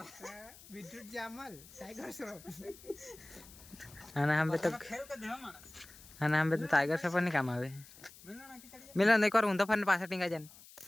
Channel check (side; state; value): left; noise; hiss, 20 dB below the sound